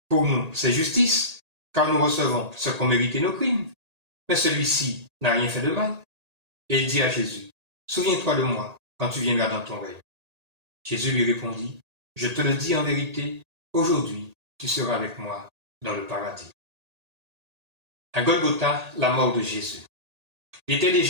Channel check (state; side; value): late; left; 1.8 ms